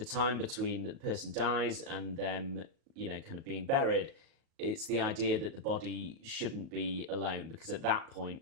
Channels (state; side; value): late; left; 37 ms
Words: time between the person dies and them, you know, kind of being buried, it's the idea that the body shouldn't be alone, because at that point,